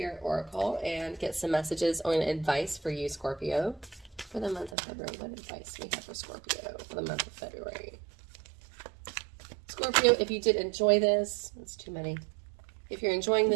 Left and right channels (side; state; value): left; drops out; at 4.8 s